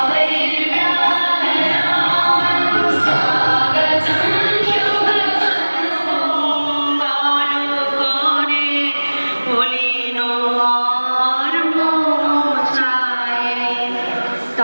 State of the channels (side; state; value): both; inverted; correlation -1.00